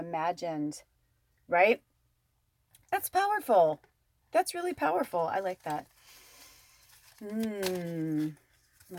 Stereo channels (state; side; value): identical; both; correlation 1.00